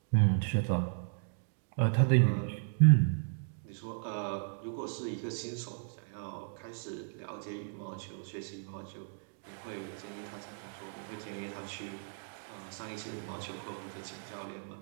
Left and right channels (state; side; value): silent; left; digital silence